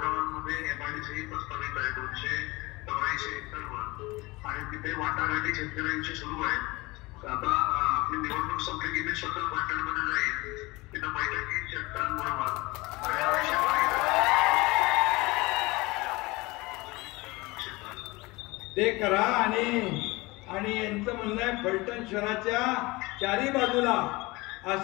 गावांमध्ये MIDC प्रस्तावित आहे. 284 एकरवर आणि तिथे वाटाघाटी शेतकऱ्यांची सुरू आहे. आता आपली निवडणूक संपली की मी स्वतः पाटणमध्ये जाईल, तिथं बैठकीत शेतकऱ्यांबरोबर ते करा. आणि यांचं म्हणणं आहे फलटण शहराच्या चारी बाजूला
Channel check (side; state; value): right; quieter; 22.7 dB